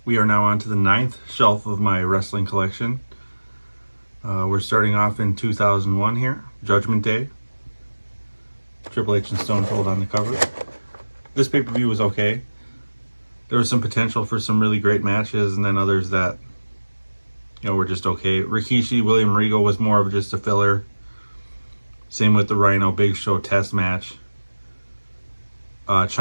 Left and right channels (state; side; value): inverted; both; correlation -1.00